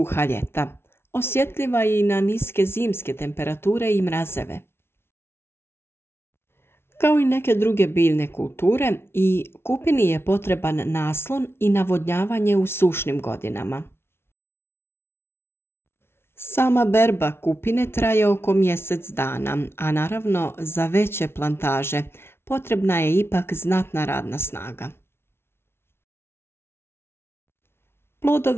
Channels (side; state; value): right; late; 0.12 ms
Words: ljeta. Osjetljiva je i na niske zimske temperature i mrazeve. Kao i neke druge biljne kulture, i kupini je potreban naslon i navodnjavanje u sušnim godinama. Sama berba kupine traje oko mjesec dana, a naravno za veće plantaže potrebna je ipak znatna radna snaga.